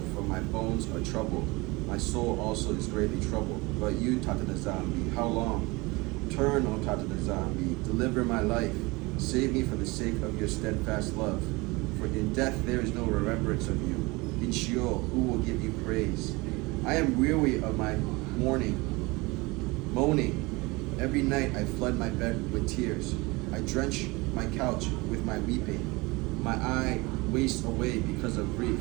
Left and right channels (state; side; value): quieter; left; 24.2 dB